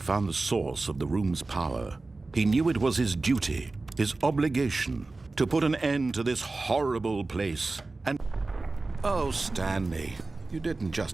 the source of the room's power, he knew it was his duty, his obligation, to put an end to this horrible place. And oh, Stanley, you didn't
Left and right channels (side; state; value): left; quieter; 3.4 dB